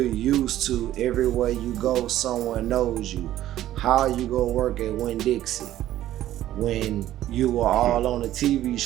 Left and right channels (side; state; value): left; quieter; 13.3 dB